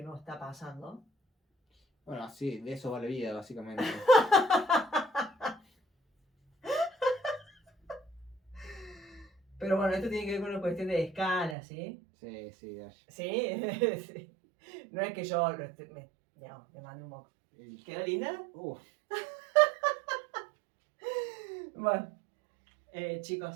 no está pasando. Bueno, sí, de eso va la vida, básicamente. Pero bueno, esto tiene que ver con una cuestión de escala, ¿sí? Sí, sí, Dash. ¿Sí? Sí. No es que yo me mande un moco. ¿Quedó linda? Bueno,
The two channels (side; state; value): left; drops out; at 11.6 s